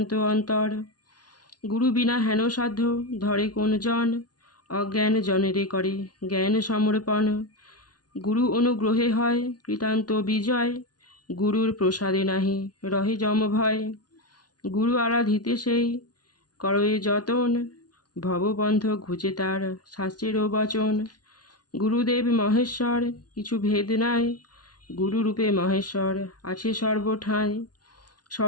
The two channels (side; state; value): right; late; 0.69 ms